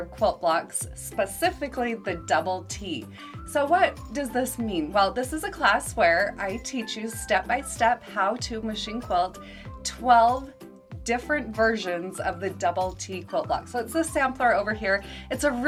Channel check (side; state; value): both; identical; correlation 1.00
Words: of Quilt Blocks, specifically the double T. So what does this mean? Well, this is a class where I teach you step by step how to machine quilt 12 different versions of the double T quilt block. So it's the sampler over here. It's a